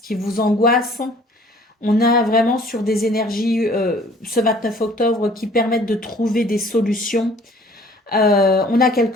qui vous angoisse, on a vraiment sur des énergies ce 29 octobre qui permettent de trouver des solutions. On a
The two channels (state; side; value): normal; both; correlation 0.53